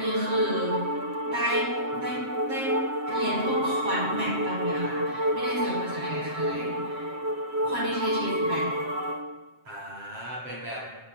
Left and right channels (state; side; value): late; left; 7.6 ms